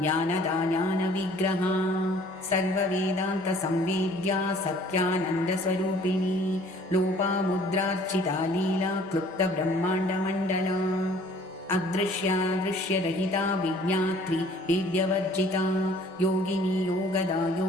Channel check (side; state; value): both; normal; correlation 0.54